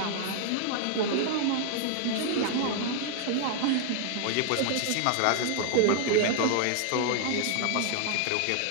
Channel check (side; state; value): both; different; correlation 0.00